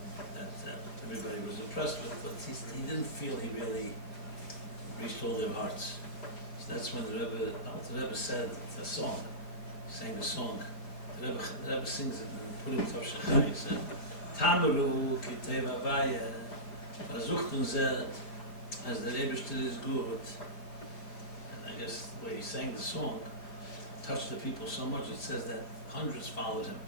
that everybody was impressed with, but he didn't feel he really reached all their hearts. So that's when the Alter Rebbe said a song, he sang a song. The Rebbe sings it and put him to Shachai. He said, Tamaru ki teva vaya, versuchten zet, as the Rebbe is good. And I guess the way he sang the song touched the people so much, it says that hundreds followed him.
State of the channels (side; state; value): right; late; 5.0 ms